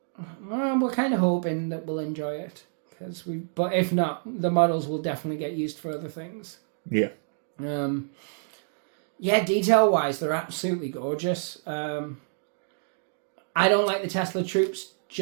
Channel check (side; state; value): left; silent; digital silence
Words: we're kind of hoping that we'll enjoy it. But if not, the models will definitely get used for other things. Yeah. Yeah, detail-wise, they're absolutely gorgeous. I don't like the Tesla troops